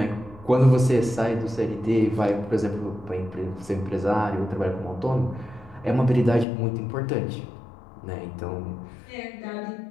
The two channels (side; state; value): right; drops out; at 6.5 s